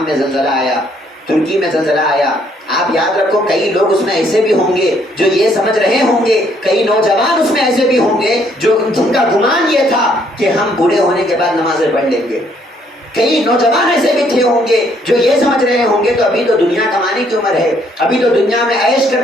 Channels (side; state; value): both; normal; correlation 0.67